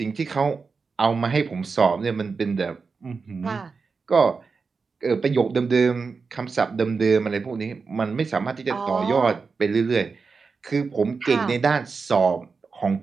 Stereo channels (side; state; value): left; quieter; 4.8 dB